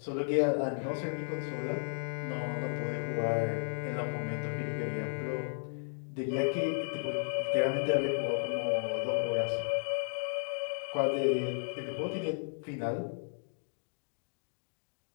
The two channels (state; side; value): silent; right; digital silence